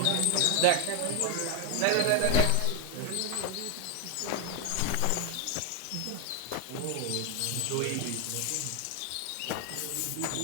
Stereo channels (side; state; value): both; different; correlation 0.01